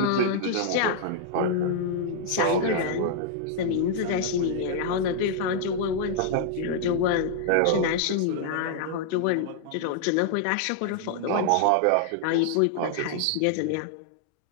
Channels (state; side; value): different; both; correlation -0.01